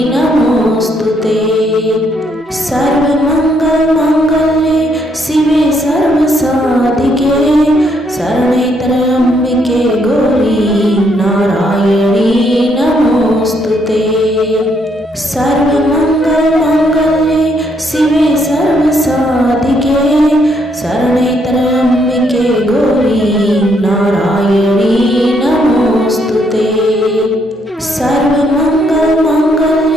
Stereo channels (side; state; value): both; normal; correlation 0.73